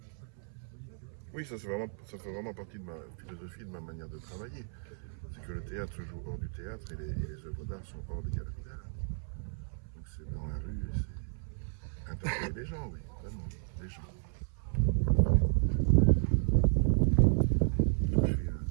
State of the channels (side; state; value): left; silent; 55 dB below the other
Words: Oui, ça fait vraiment partie de ma philosophie, de ma manière de travailler. C'est que le théâtre se joue hors du théâtre et les œuvres d'art sont hors des galeries d'art. Donc c'est dans la rue et c'est interpeller les gens, oui, vraiment, les gens. Toucher